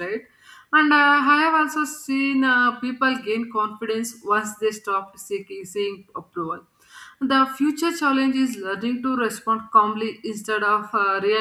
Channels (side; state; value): both; identical; correlation 1.00